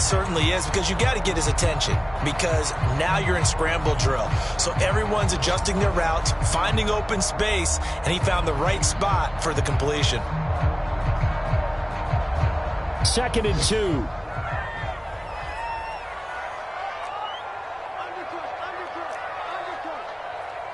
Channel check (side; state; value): both; identical; correlation 1.00